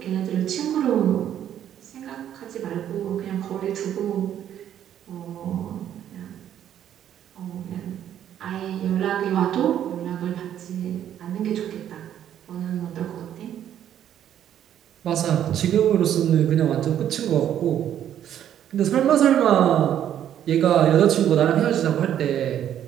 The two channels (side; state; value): left; quieter; 10.4 dB